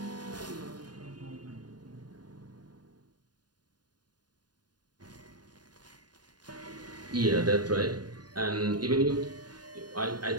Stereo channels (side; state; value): left; late; 0.70 ms